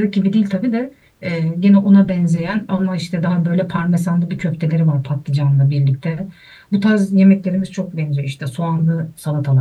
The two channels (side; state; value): both; identical; correlation 1.00